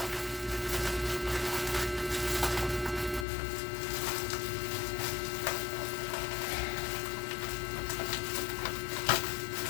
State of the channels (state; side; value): drops out; right; at 3.2 s